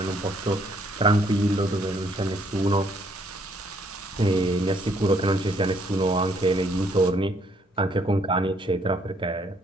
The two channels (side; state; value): both; normal; correlation 0.67